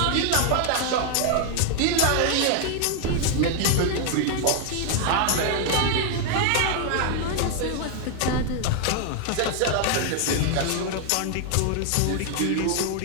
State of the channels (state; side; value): different; both; correlation 0.00